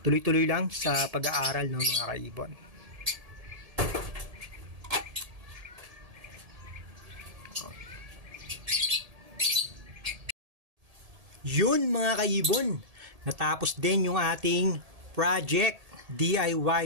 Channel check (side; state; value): left; late; 1.7 ms